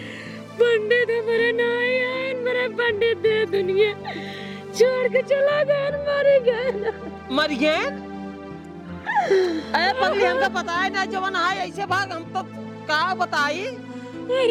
पंडित हमारे नहीं आए, मेरे पंडित दे दुनिया छोड़ के चला गया, मर गया। मर गए? अरे पगली हमको पता है ना जवान है ऐसे भाग, हम तो का बताई।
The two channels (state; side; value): identical; both; correlation 1.00